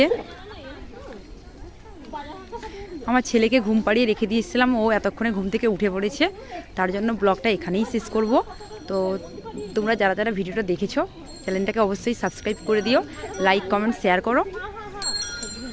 আমার ছেলেকে ঘুম পাড়িয়ে রেখে দিয়েছিলাম, ও এতক্ষণে ঘুম থেকে উঠে পড়েছে, তার জন্য ব্লগটা এখানেই শেষ করব। তো তোমরা যারা যারা ভিডিওটা দেখেছো চ্যানেলটাকে অবশ্যই সাবস্ক্রাইব করে দিও, লাইক কমেন্ট শেয়ার করো।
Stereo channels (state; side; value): identical; both; correlation 1.00